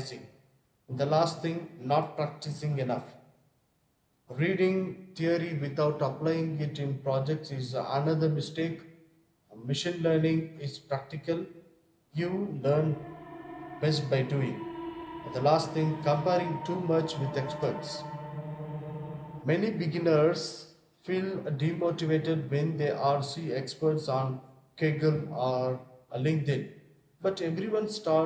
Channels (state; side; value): identical; both; correlation 1.00